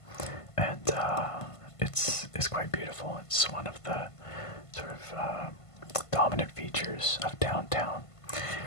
And it's quite beautiful. It's one of the sort of dominant features of downtown.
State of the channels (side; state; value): right; late; 1.5 ms